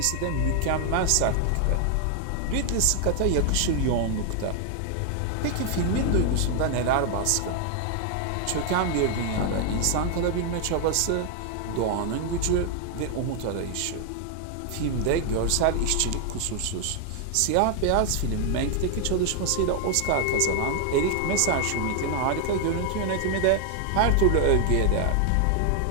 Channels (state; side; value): different; both; correlation 0.00